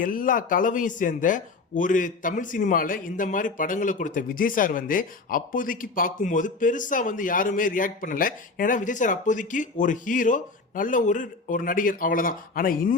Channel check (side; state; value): right; quieter; 3.9 dB